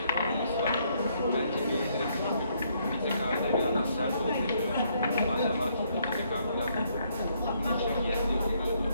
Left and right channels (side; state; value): both; inverted; correlation -0.71